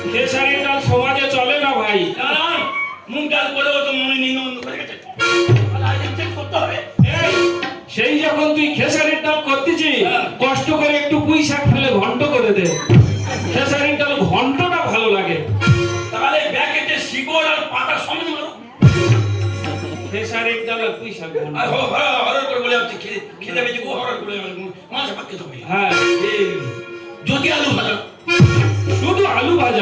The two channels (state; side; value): identical; both; correlation 1.00